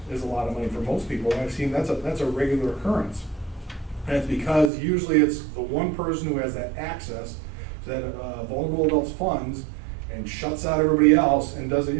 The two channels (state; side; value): drops out; left; at 4.7 s